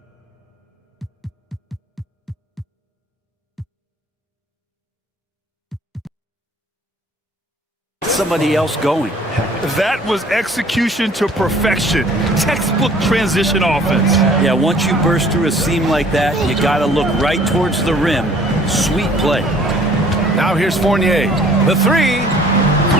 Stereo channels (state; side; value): normal; both; correlation 0.54